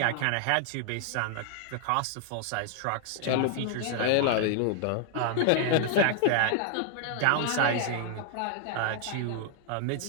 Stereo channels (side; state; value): both; different; correlation 0.00